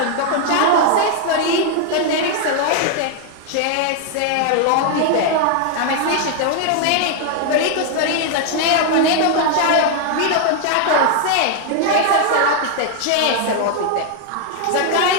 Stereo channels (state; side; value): different; both; correlation 0.00